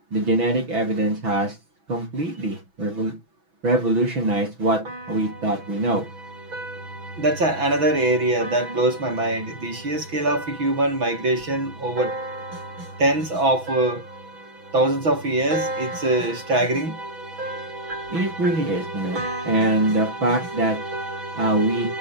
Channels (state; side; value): late; left; 6.1 ms